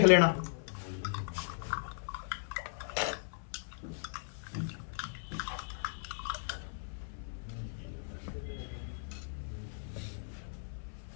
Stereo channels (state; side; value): silent; right; 53 dB below the other